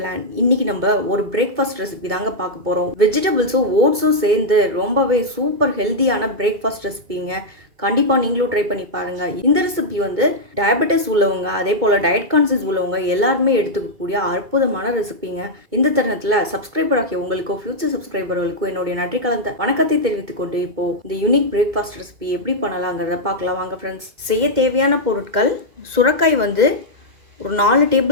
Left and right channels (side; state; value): left; late; 2.2 ms